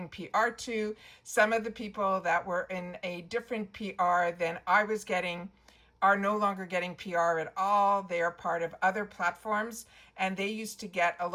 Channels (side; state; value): both; identical; correlation 1.00